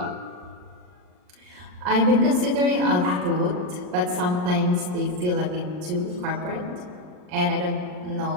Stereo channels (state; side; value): late; left; 39 ms